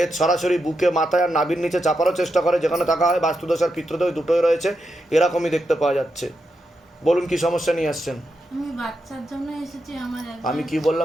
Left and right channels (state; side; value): normal; both; correlation 0.85